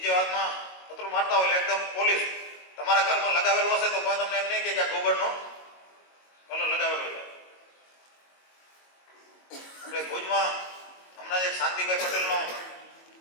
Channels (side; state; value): right; late; 22 ms